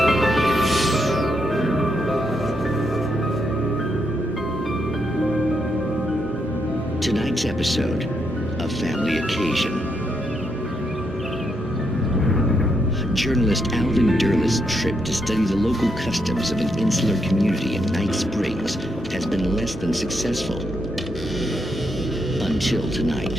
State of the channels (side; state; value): both; normal; correlation 0.79